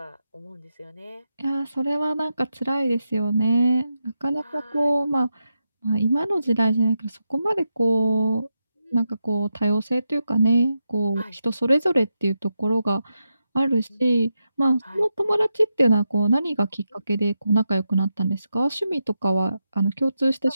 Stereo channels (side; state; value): both; inverted; correlation -0.87